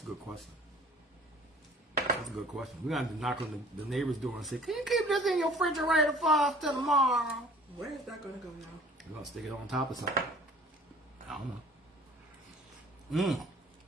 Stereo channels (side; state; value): both; normal; correlation 0.50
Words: a good question. That's a good question. We're going to knock on the neighbor's door and say, can you keep this in your refrigerator for us till tomorrow? Where is that going to go now? We're going to stick it on top of something. I don't know.